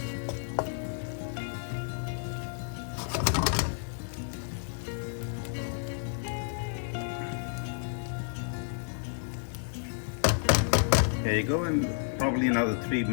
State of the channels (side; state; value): right; silent; digital silence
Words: There you go, and probably another 3